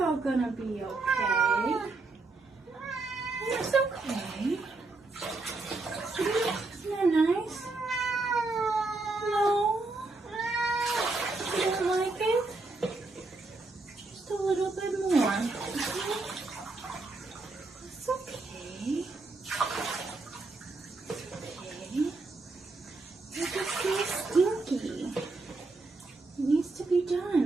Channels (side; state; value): left; quieter; 3.4 dB